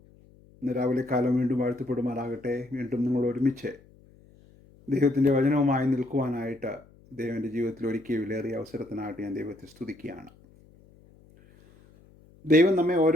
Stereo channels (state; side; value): noise; left; hum, 27 dB below the sound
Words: ഇന്ന് രാവിലെ കാലം വീണ്ടും വാഴ്ത്തപ്പെടുമാറാകട്ടെ. വീണ്ടും നിങ്ങൾ ഒരുമിച്ച് ദൈവത്തിൻ്റെ വചനവുമായി നിൽക്കുവാനായിട്ട് ദൈവൻ്റെ ജീവിതത്തിൽ ഒരുക്കിയ വിലയേറിയ അവസരത്തിനായിട്ട് ഞാൻ ദൈവത്തെ സ്തുതിക്കുകയാണ്. ദൈവം നമ്മെ